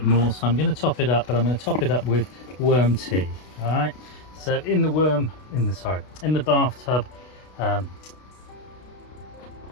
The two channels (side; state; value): right; late; 32 ms